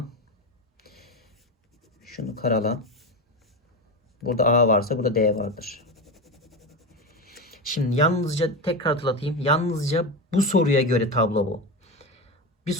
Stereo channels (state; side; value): normal; both; correlation 0.19